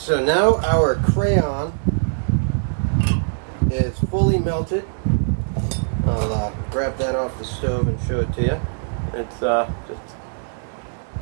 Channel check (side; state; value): left; silent; digital silence